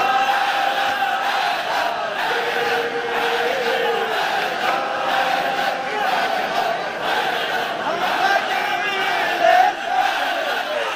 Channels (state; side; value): identical; both; correlation 1.00